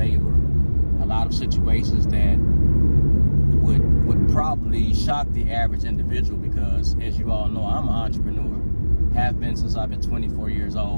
a lot of situations that would probably shock the average individual, because as you all know, I'm an entrepreneur, have been since I've been 24 years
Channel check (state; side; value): inverted; both; correlation -1.00